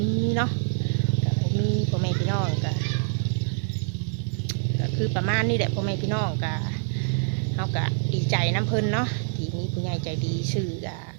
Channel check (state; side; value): silent; left; 57 dB below the other